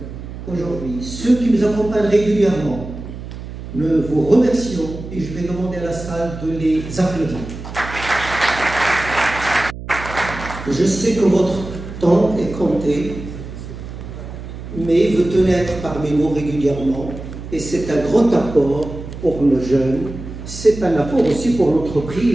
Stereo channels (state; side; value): noise; right; hum, 11 dB below the sound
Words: aujourd'hui, ceux qui nous accompagnent régulièrement. Nous vous remercions et je vais demander à la salle de les applaudir. Je sais que votre temps est compté, mais vous tenez à être parmi nous régulièrement et c'est un grand apport pour nos jeunes, c'est un apport aussi pour